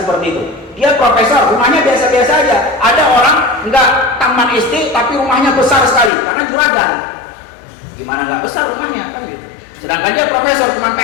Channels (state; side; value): drops out; right; at 6.1 s